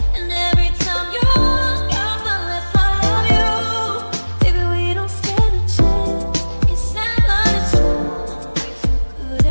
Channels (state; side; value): inverted; both; correlation -1.00